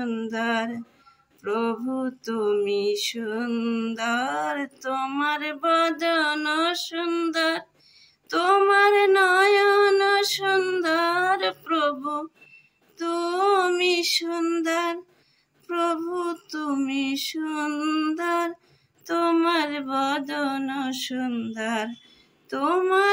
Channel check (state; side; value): identical; both; correlation 1.00